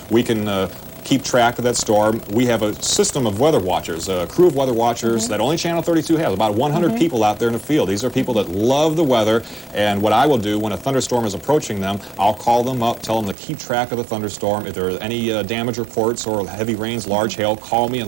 we can keep track of that storm. We have a system of weather watchers, a crew of weather watchers that only Channel 32 has, about 100 people out there in the field. These are people that love the weather, and what I will do when a thunderstorm is approaching them, I'll call them up, tell them to keep track of the thunderstorm. If there are any damage reports or heavy rains, large hail, call me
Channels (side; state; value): left; drops out; at 13.4 s